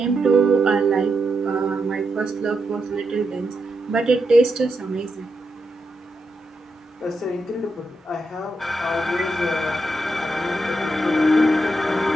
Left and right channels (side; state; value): both; normal; correlation 0.84